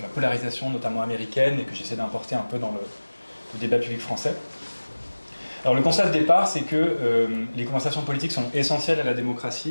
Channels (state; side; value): inverted; both; correlation -1.00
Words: la polarisation notamment américaine et que j'essaie d'importer un peu dans le débat public français. Alors le constat de départ, c'est que les conversations politiques sont essentielles à la